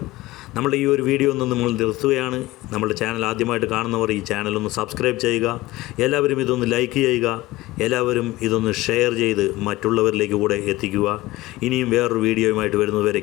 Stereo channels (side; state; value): right; quieter; 18.6 dB